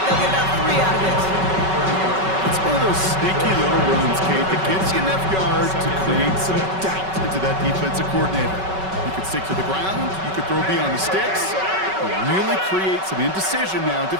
they'll get about 3 out of it. It's one of those sneaky little runs, Kate, that gives you enough yards to create some doubt into that defensive coordinator. You could stick to the ground, you could throw beyond the sticks, and really create some indecision now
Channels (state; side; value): late; left; 5.3 ms